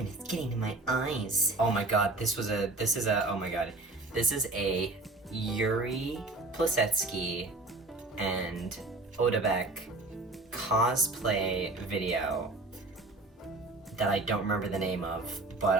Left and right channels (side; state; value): left; quieter; 3.0 dB